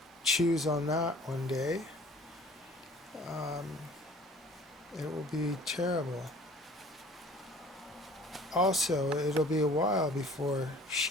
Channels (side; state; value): both; normal; correlation 0.50